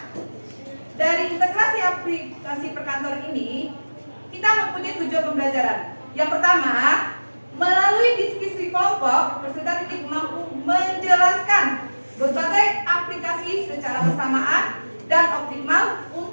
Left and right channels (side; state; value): both; inverted; correlation -1.00